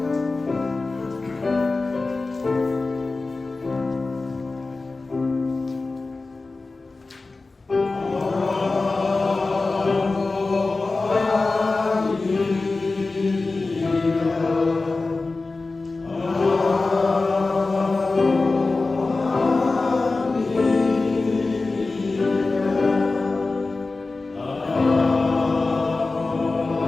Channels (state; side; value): quieter; right; 3.6 dB